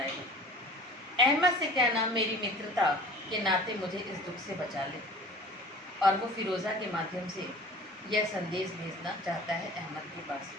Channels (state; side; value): normal; both; correlation 0.43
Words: अहमद से कहना मेरी मित्रता के नाते मुझे इस दुख से बचा ले। और वो फिरोजा के माध्यम से यह संदेश भेजना चाहता है अहमद के पास।